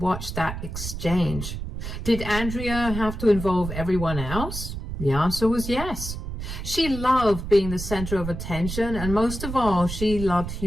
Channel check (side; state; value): right; noise; rumble, 7 dB below the sound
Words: that exchange. Did Andrea have to involve everyone else? The answer was yes. She loved being the center of attention, and most of all, she loved